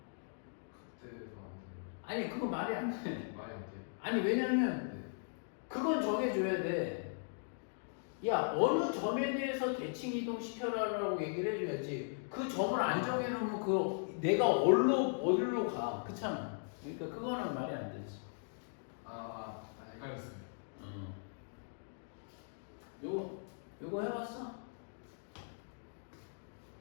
그때도 안 아니 그거 말이 안 돼. 돼요. 말이 안 돼요. 아니 왜냐면 네. 그건 정해줘야 돼. 야 어느 점에 대해서 대칭 이동시켜라라고 얘기를 해줘야지. 그 점을 안 정해놓으면 그 내가 어디로 가. 그렇잖아. 그러니까 그거는 말이 안 되지. 헷갈렸어요. 요거 해봤어?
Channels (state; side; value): silent; right; digital silence